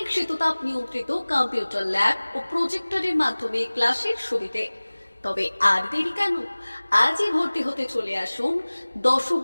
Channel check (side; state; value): both; inverted; correlation -1.00